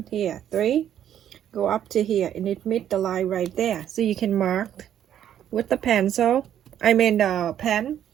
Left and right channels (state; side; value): quieter; left; 10.4 dB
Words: here 3, go up to here and it meet the line right there. So you can mark with the pencil, the pen.